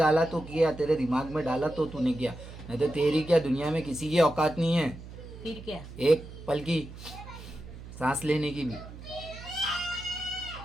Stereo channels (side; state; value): right; noise; hum, 14 dB below the sound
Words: तो किया, तेरे दिमाग में डाला तो तूने किया, नहीं तो तेरी क्या दुनिया में किसी की औकात नहीं है फिर क्या। एक पल की सांस लेने की भी।